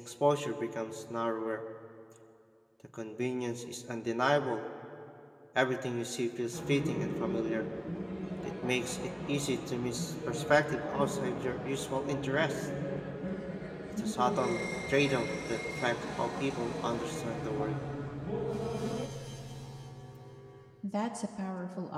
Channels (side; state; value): both; identical; correlation 1.00